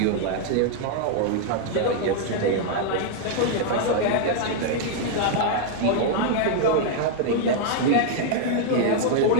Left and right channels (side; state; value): both; different; correlation 0.00